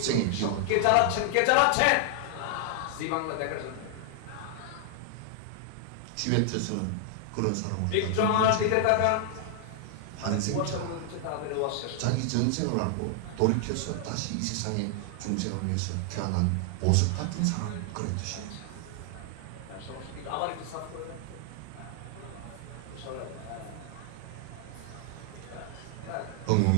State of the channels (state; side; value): different; both; correlation 0.00